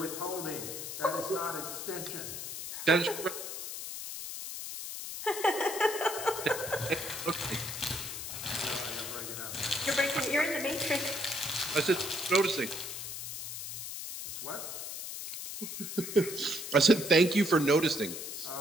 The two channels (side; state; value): left; noise; hiss, 7 dB below the sound